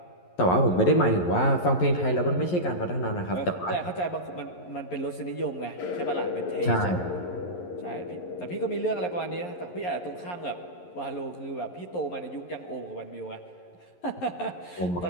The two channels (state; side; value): late; right; 11 ms